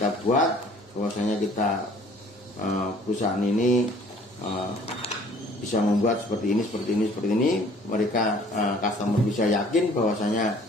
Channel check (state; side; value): normal; both; correlation 0.54